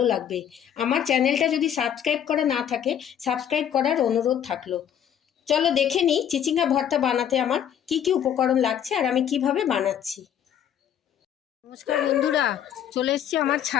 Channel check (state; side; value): quieter; right; 9.4 dB